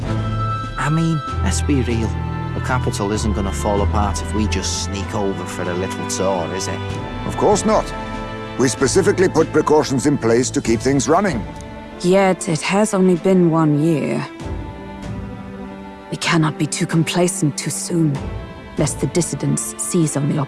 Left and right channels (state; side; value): identical; both; correlation 1.00